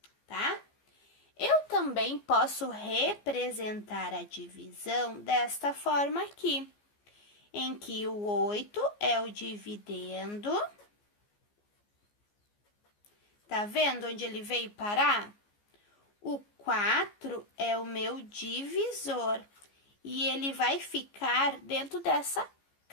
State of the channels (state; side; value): late; right; 14 ms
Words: tá? Eu também posso representar a divisão desta forma aqui, em que o 8 é o dividendo. Tá vendo onde ele veio parar? O 4 é o meu divisor e ele vai ficar dentro dessa